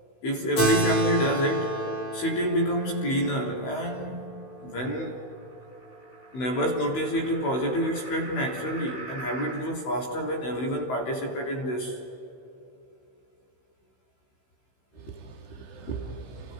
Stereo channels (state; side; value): late; right; 16 ms